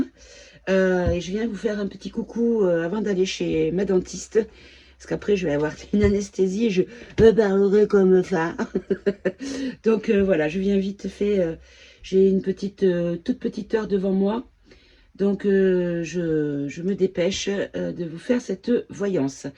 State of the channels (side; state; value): both; identical; correlation 1.00